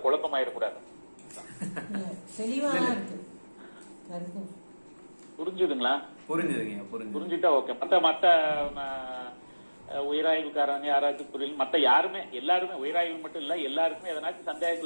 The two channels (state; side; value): inverted; both; correlation -1.00